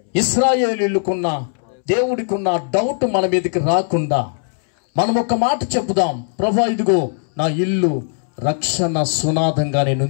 ఇశ్రాయేలీయులకున్న దేవుడికున్న డౌట్ మన మీదకి రాకుండా మనం ఒక మాట చెప్పుదాం, ప్రభు ఇదిగో నా ఇల్లు రక్షణ సునాదంగా నేను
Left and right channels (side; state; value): right; silent; 67 dB below the other